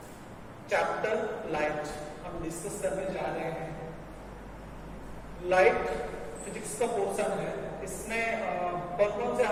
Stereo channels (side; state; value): both; identical; correlation 1.00